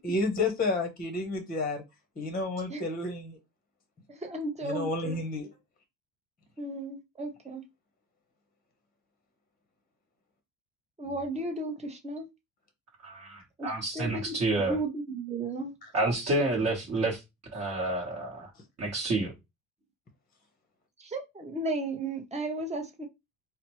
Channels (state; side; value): normal; both; correlation 0.32